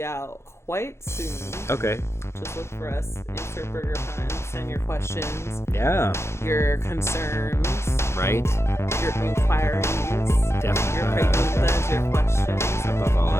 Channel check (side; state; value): right; late; 0.13 ms